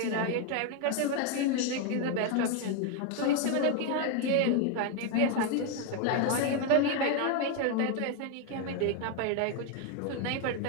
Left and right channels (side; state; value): both; different; correlation 0.01